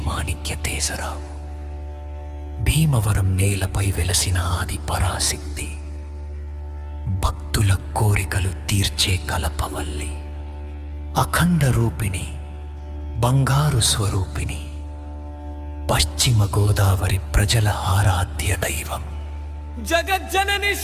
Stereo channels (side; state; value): both; identical; correlation 1.00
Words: మాణిక్య తేజరావు. భీమవరం నేలపై వెలసిన ఆది పరాశక్తి, భక్తుల కోరికలు తీర్చే కలపవల్లి, అఖండ రూపిణి, బంగారు స్వరూపిణి, పశ్చిమ గోదావరి ప్రజల ఆరాధ్య దైవం, జగజ్జనని